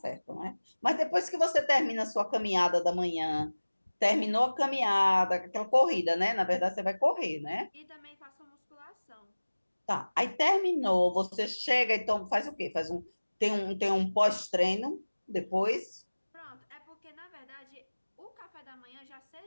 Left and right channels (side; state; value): both; inverted; correlation -1.00